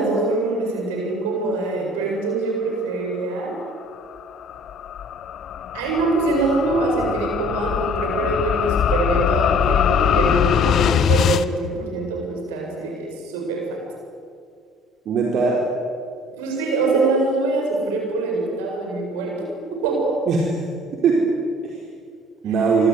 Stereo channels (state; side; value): normal; both; correlation 0.51